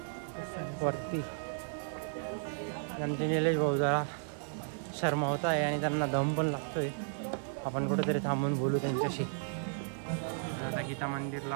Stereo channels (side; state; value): left; silent; digital silence